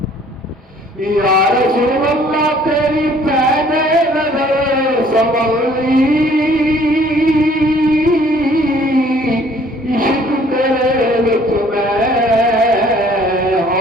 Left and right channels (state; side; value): normal; both; correlation 0.58